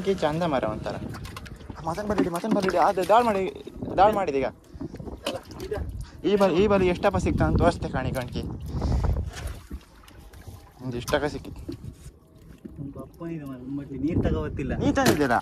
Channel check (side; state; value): both; identical; correlation 1.00